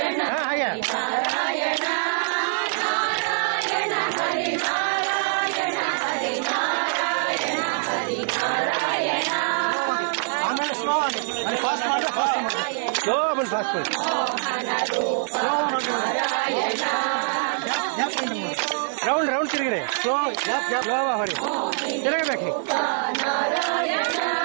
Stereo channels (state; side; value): silent; left; digital silence